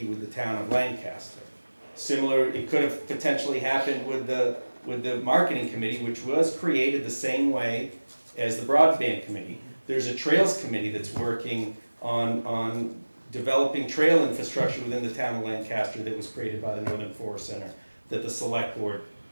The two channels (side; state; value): both; inverted; correlation -1.00